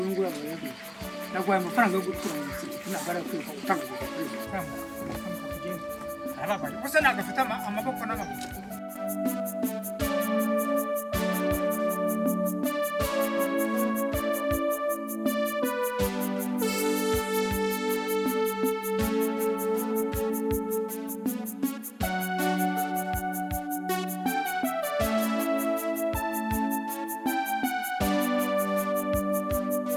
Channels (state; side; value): identical; both; correlation 1.00